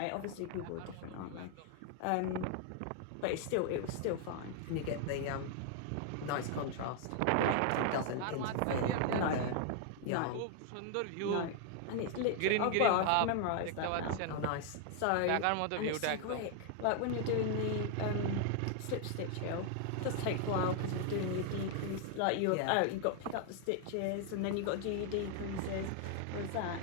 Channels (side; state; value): both; different; correlation 0.00